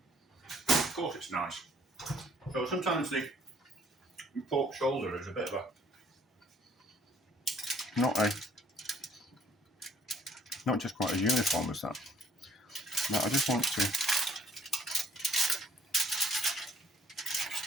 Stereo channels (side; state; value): both; normal; correlation 0.61